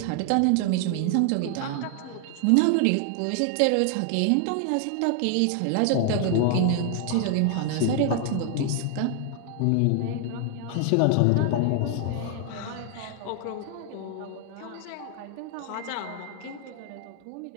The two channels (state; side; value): different; both; correlation 0.00